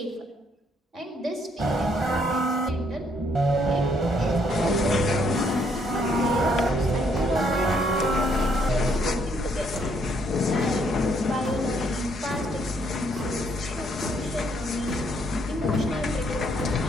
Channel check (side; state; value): both; normal; correlation 0.69